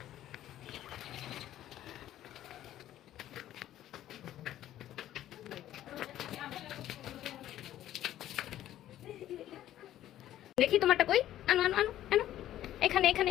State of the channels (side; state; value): right; quieter; 12.8 dB